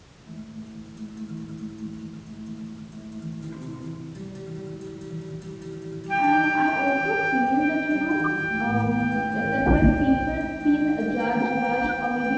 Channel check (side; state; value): both; identical; correlation 1.00